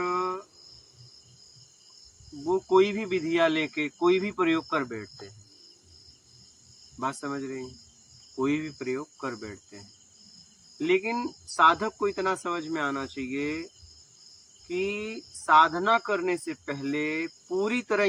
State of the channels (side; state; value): both; identical; correlation 1.00